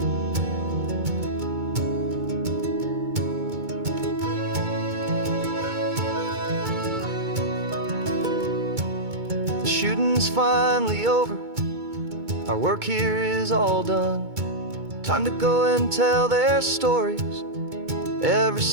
The shooting's finally over, our work here is all done. Time to go and tell their stories, every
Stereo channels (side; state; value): left; late; 2.2 ms